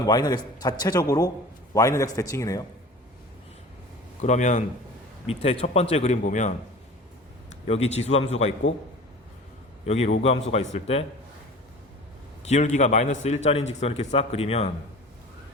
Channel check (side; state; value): both; normal; correlation 0.40